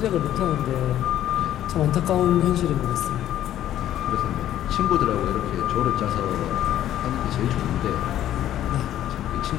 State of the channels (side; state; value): right; quieter; 12.1 dB